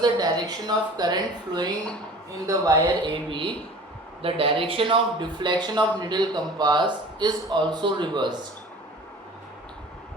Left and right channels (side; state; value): both; normal; correlation 0.44